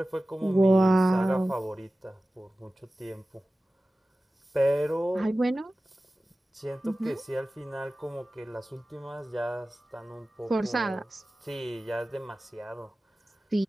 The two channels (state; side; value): normal; both; correlation 0.96